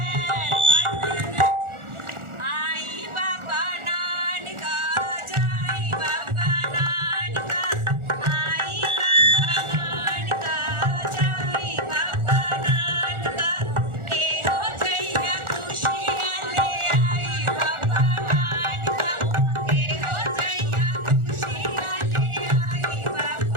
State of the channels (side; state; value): left; late; 1.4 ms